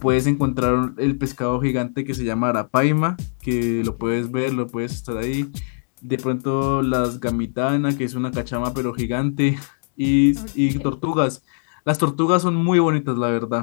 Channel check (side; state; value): right; silent; digital silence